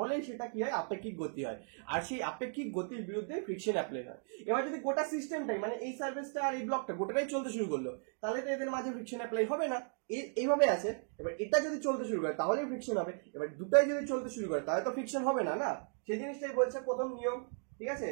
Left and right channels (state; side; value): silent; left; 54 dB below the other